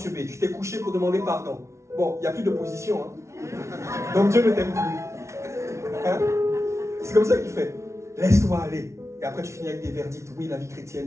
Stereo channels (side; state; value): left; late; 0.13 ms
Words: Tu t'es couché pour demander pardon. Bon, il n'y a plus de position. Hein. Donc, Dieu ne t'aime plus. Hein? C'est comme ça qu'il fait. Laisse-toi aller. Et après, tu finis avec des verdicts. Oui, la vie